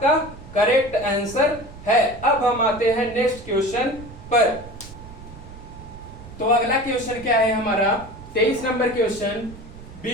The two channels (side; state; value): right; noise; rumble, 16 dB below the sound